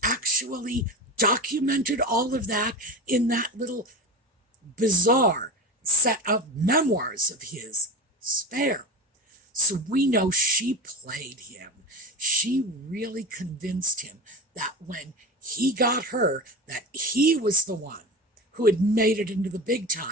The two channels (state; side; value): normal; both; correlation 0.27